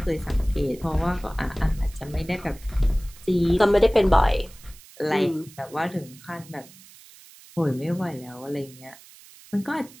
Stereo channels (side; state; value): right; noise; hiss, 21 dB below the sound